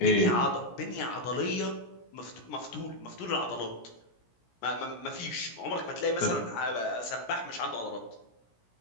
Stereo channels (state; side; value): late; right; 17 ms